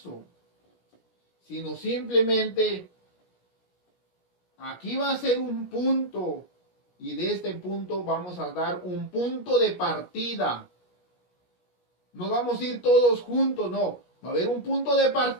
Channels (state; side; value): late; right; 17 ms